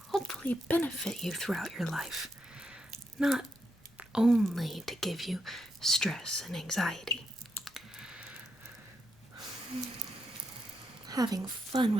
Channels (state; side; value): normal; both; correlation 0.82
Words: hopefully benefit you throughout your life, not only to give you stress and anxiety. Having fun